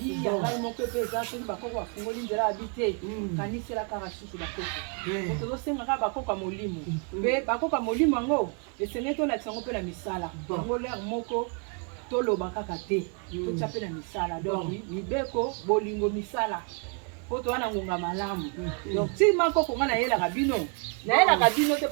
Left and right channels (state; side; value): quieter; left; 37.9 dB